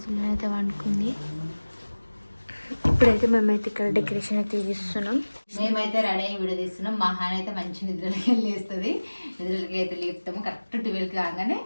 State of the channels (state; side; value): inverted; both; correlation -1.00